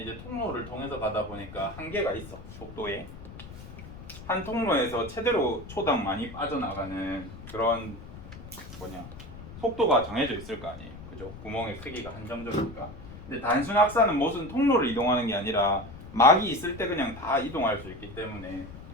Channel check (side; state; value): left; noise; rumble, 14 dB below the sound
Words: 이제 통로를 통해서 가다 보니까 한계가 있어. 속도에. 한 통로에서 최대로 초당 많이 빠져나가는 그런 속도가 정해져 있을 거 아니에요. 그죠? 구멍의 크기가 한정적이니까. 근데 단순 확산은 무슨 통로를 이동하는 게 아니라 막이 있을 때 그냥 다 이동할 수 있기 때문에